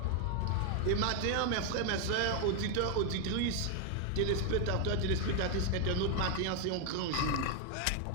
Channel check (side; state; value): both; different; correlation 0.01